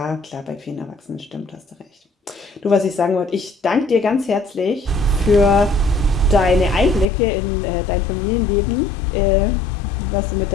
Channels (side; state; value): right; drops out; at 7.1 s